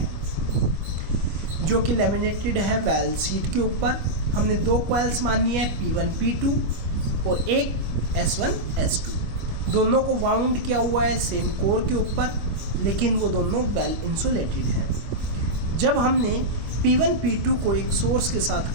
जो कि लैमिनेटेड है वेल शीट के ऊपर। हमने दो कॉइल्स मानी है P1 P2 और एक S1 S2। दोनों को वाउंड किया हुआ है सेम कोर के ऊपर, लेकिन वो दोनों वेल इंसुलेटेड है। जब हमने P1 P2 को एक सोर्स के साथ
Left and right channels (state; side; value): late; left; 25 ms